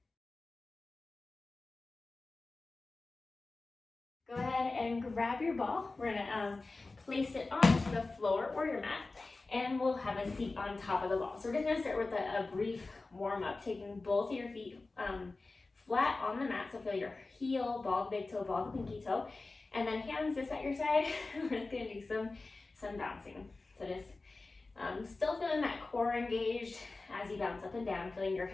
Go ahead and grab your ball. We're going to place it onto the floor or your mat. And we'll have a seat on top of the ball. So we're just going to start with a brief warm up, taking both of your feet flat on the mat. So feel your heel, ball the big toe, ball the pinky toe. And then hands just at your side. We're just going to do some bouncing. So just still feeling that core engaged as you bounce up and down, feeling your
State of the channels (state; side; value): quieter; right; 3.5 dB